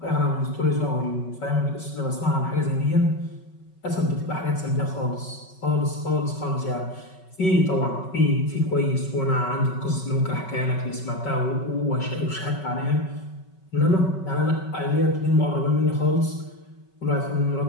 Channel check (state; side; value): late; right; 5.3 ms